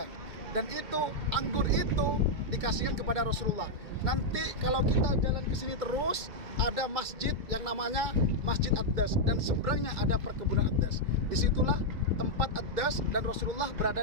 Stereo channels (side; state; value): left; late; 2.2 ms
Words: Dan itu anggur itu dikasihkan kepada Rasulullah. Nanti kalau kita jalan ke sini terus ada masjid yang namanya Masjid Addas dan seberangnya ada perkebunan Addas. Disitulah tempat Addas dan Rasulullah